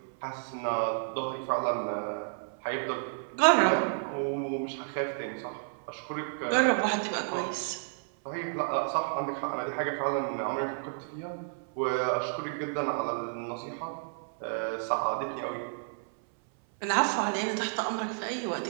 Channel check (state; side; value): silent; left; 57 dB below the other